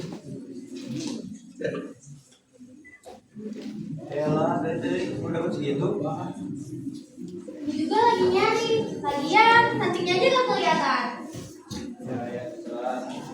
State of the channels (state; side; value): identical; both; correlation 1.00